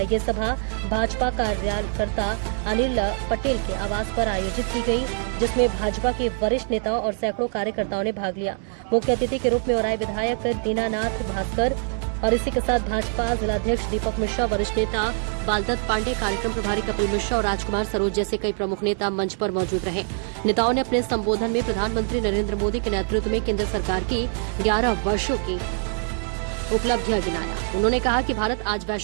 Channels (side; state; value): left; silent; 59 dB below the other